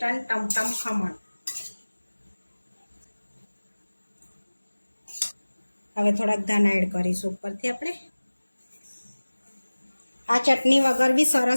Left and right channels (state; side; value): inverted; both; correlation -1.00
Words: ટમટમ ખમણ। હવે થોડાક ધાણા એડ કરીશું ઉપરથી આપણે। આ ચટણી વગર બી